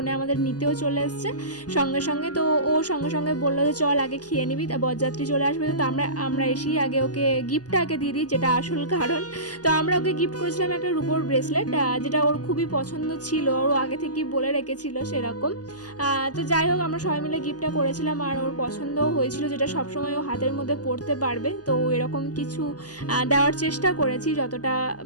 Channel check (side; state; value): right; late; 0.68 ms